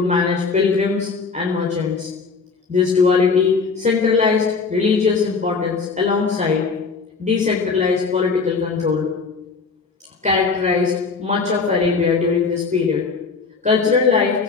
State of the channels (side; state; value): right; quieter; 4.8 dB